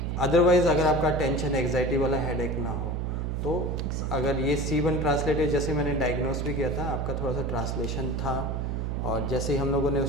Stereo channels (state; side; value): noise; right; hum, 1 dB below the sound